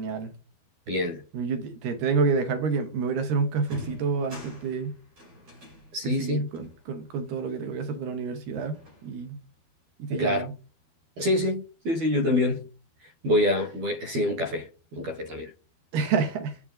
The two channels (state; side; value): late; left; 12 ms